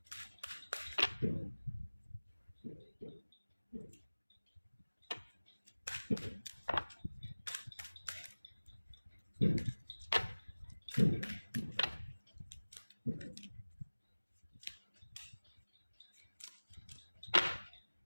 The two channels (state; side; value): inverted; both; correlation -1.00